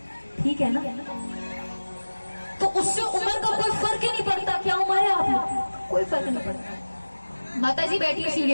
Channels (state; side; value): inverted; both; correlation -1.00